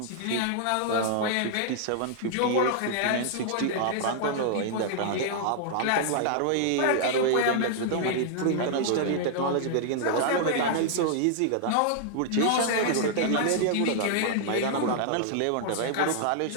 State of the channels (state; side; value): different; both; correlation -0.01